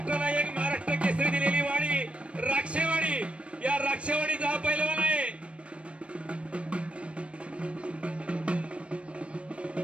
एक महाराष्ट्र केसरी दिलेली वाडी राक्षेवाडी. या राक्षेवाडीचा हा पैलवान आहे.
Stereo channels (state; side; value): late; left; 0.061 ms